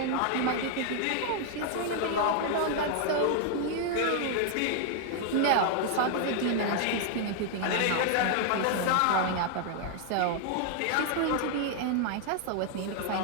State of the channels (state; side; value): different; both; correlation 0.00